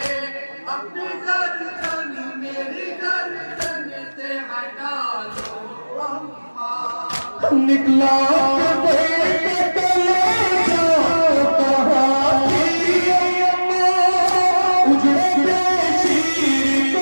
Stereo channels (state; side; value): inverted; both; correlation -1.00